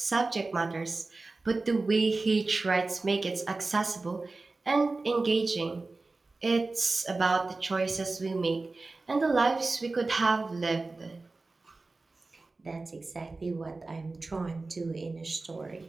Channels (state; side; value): quieter; left; 3.5 dB